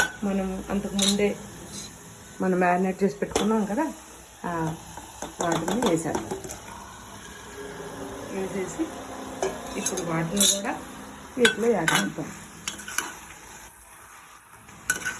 మనం అంతకుముందే మనం మ్యారినేట్ చేసి పెట్టుకున్నాం కదా, వాటిని వేసేసి ఇప్పుడు వాటిని కూడా వీటిలో యాడ్ చేద్దాం.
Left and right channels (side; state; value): both; identical; correlation 1.00